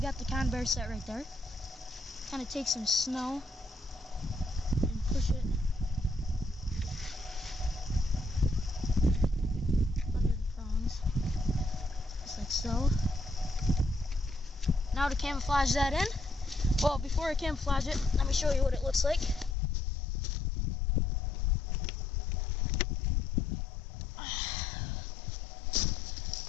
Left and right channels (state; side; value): drops out; right; at 19.6 s